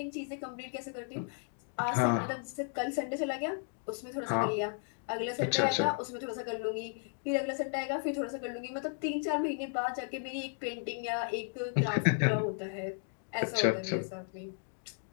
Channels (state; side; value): silent; right; 55 dB below the other